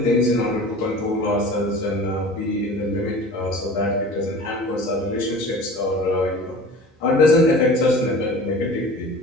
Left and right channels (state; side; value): normal; both; correlation 0.40